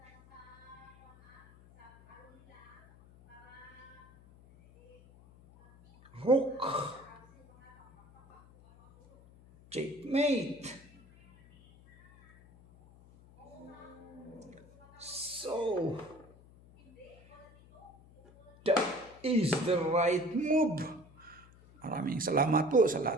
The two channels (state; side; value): noise; left; hum, 24 dB below the sound